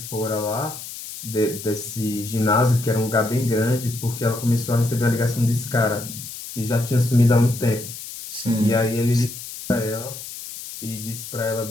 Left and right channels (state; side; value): noise; left; hiss, 11 dB below the sound